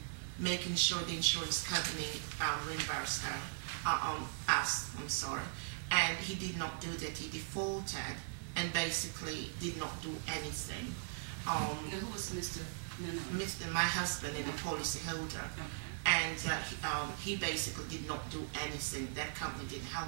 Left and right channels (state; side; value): silent; left; 52 dB below the other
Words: making sure the insurance company reimbursed us. And he did not do that. He defaulted and basically did not do anything. Who was Mr. Nanan? My husband and the policy holder. Okay. And he basically did not do anything. That company didn't